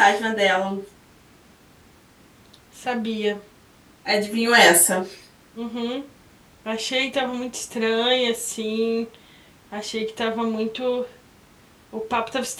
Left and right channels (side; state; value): both; identical; correlation 1.00